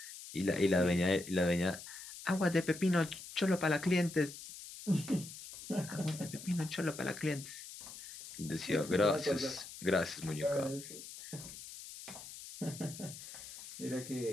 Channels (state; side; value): noise; left; hiss, 13 dB below the sound